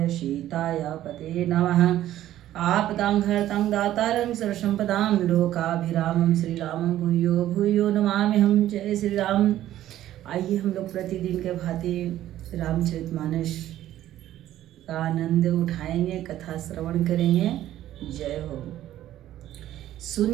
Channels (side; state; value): left; quieter; 13.1 dB